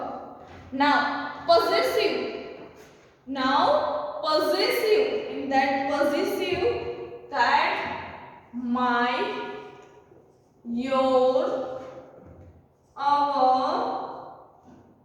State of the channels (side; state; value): both; identical; correlation 1.00